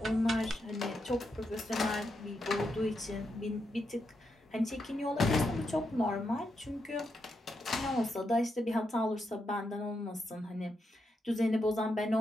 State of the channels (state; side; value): normal; both; correlation 0.84